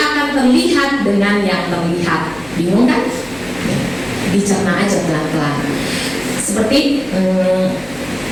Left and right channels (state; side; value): noise; left; hum, 22 dB below the sound